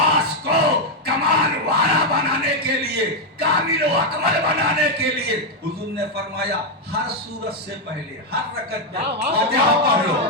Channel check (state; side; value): normal; both; correlation 0.02